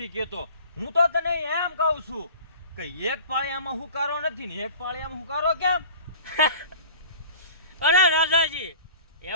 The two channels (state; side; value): inverted; both; correlation -0.43